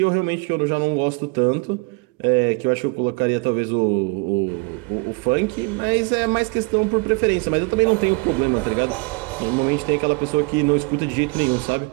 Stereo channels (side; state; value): left; quieter; 29.0 dB